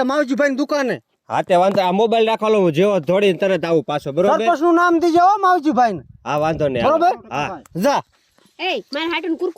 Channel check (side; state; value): both; identical; correlation 1.00